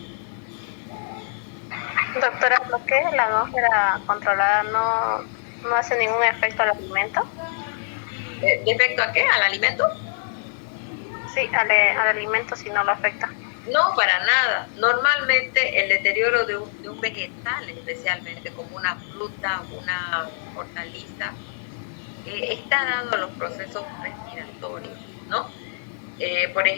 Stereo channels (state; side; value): silent; right; 57 dB below the other